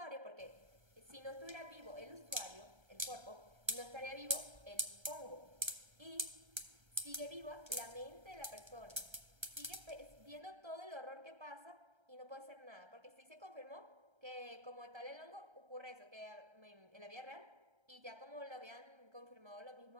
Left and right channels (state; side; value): late; left; 1.3 ms